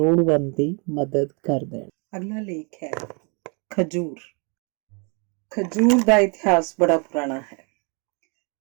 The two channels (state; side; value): quieter; left; 35.1 dB